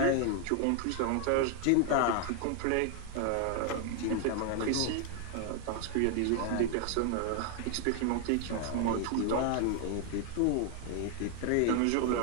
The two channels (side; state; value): both; different; correlation 0.00